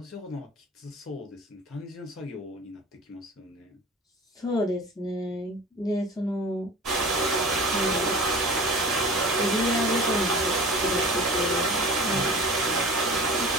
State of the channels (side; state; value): both; normal; correlation 0.39